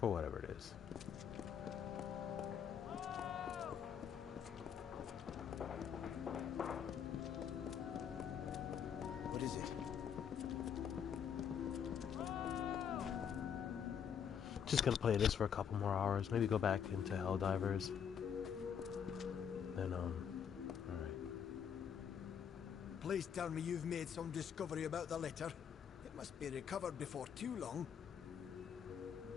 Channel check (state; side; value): quieter; right; 7.9 dB